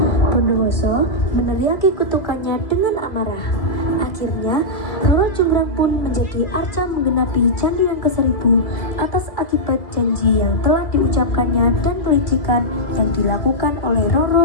Bondowoso meneriaki kutukannya dengan amarah. Akhirnya, Roro Jonggrang pun menjadi arca menggenapi candi yang ke-1000 atas akibat janji yang telah diucapkannya dan kelicikan yang dilakukan oleh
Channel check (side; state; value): right; late; 2.2 ms